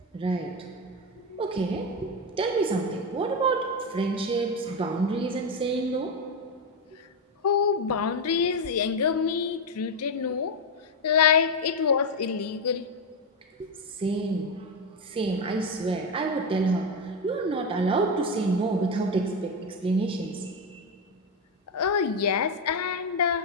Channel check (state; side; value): normal; both; correlation 0.09